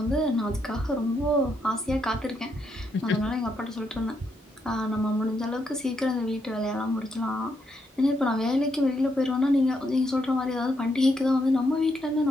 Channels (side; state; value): both; normal; correlation 0.78